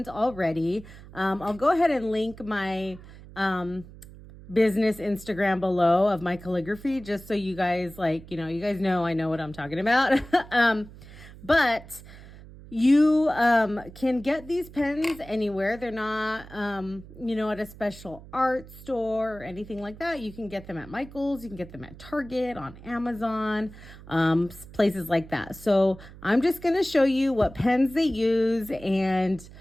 already. I'll go ahead and link my business Instagram below of my calligraphy, just so you guys you guys know I know what I'm talking about. But you can get these pens anywhere. They're not, at a special art store or anything like that. You can get them at Michael's. You can get them at Target, on Amazon, places like that. So I'm just going to show you what pens they use and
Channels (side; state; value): right; noise; hum, 18 dB below the sound